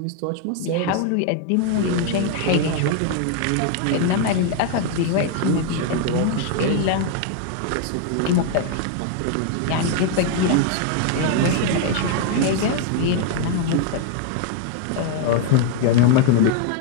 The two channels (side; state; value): both; different; correlation 0.01